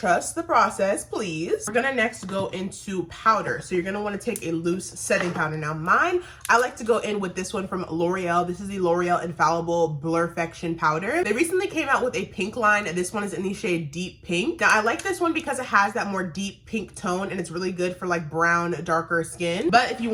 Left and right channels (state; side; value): identical; both; correlation 1.00